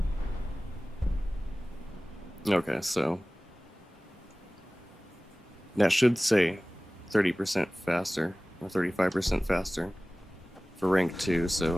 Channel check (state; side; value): normal; both; correlation 0.98